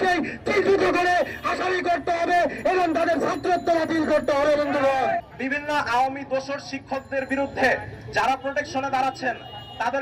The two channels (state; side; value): identical; both; correlation 1.00